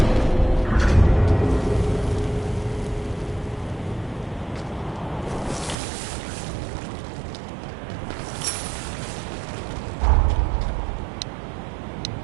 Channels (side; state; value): left; drops out; at 5.8 s